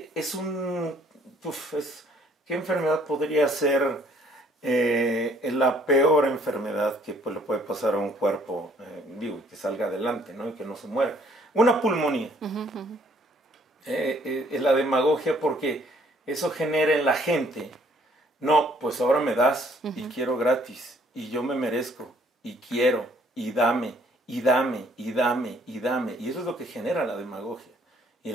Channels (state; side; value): normal; both; correlation 0.62